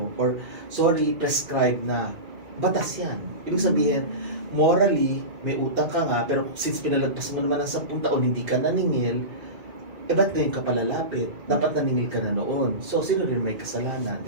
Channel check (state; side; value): late; left; 2.2 ms